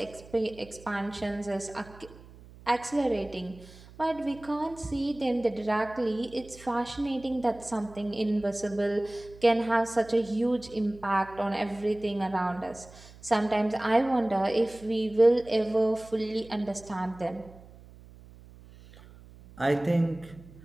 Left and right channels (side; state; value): right; noise; hum, 21 dB below the sound